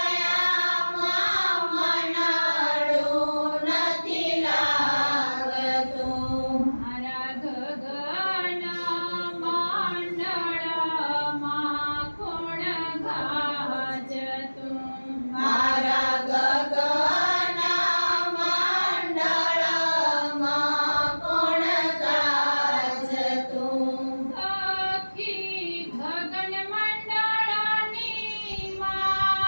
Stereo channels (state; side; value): inverted; both; correlation -1.00